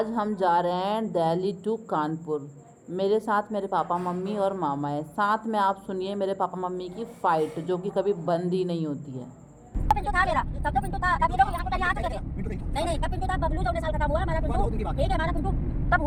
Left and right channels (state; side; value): identical; both; correlation 1.00